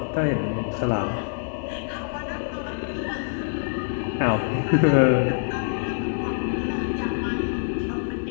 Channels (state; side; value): silent; right; digital silence